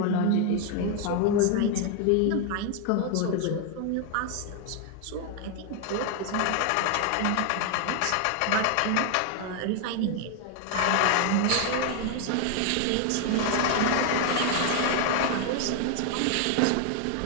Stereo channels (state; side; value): different; both; correlation 0.01